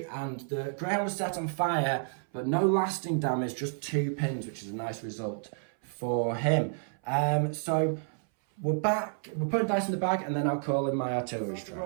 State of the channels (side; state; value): left; silent; 58 dB below the other